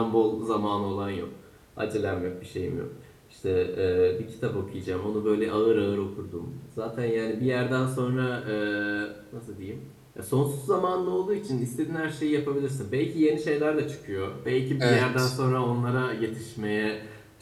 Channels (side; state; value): both; identical; correlation 1.00